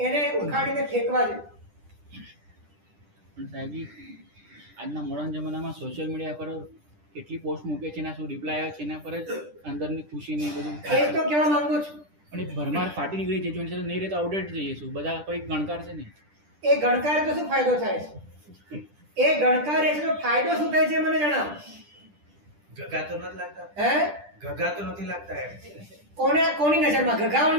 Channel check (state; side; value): late; left; 10 ms